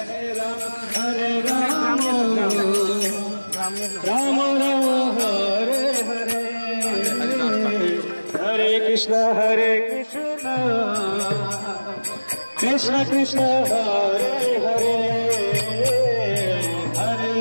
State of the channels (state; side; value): inverted; both; correlation -1.00